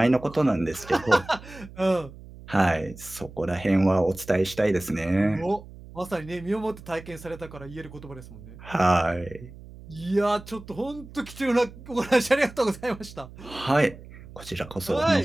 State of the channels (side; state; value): right; noise; hum, 17 dB below the sound